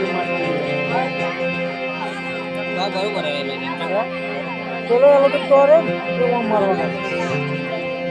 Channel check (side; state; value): both; identical; correlation 1.00